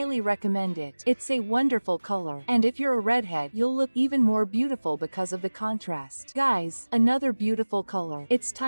recommend it. It's a wonderful color, and if you're a redhead, you'll look even more beautiful because of the contrast. Guys, another beautiful color. It's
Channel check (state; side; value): inverted; both; correlation -1.00